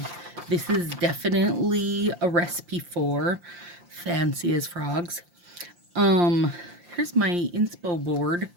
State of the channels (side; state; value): left; late; 5.7 ms